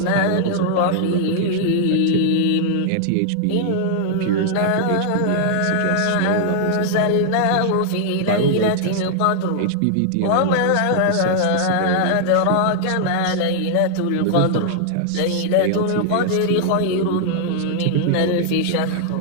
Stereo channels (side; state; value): both; different; correlation -0.01